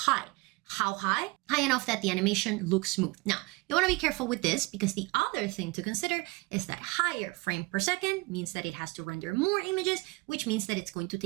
How high? High enough that the animation looks smooth. Now, you want to be careful with this because the other thing to consider is that higher frame per second means that it has to render more images, which means that it's going to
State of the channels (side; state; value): left; quieter; 24.9 dB